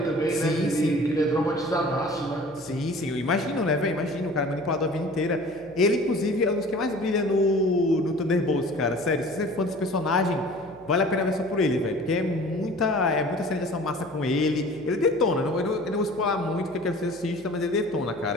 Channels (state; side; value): noise; left; hum, 26 dB below the sound